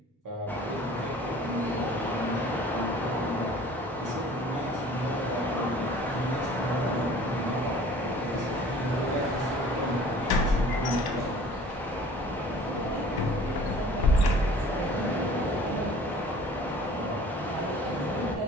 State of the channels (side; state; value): both; normal; correlation 0.48